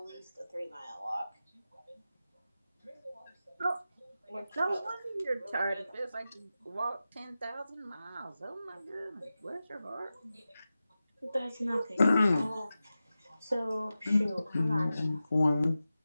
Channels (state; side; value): inverted; both; correlation -0.94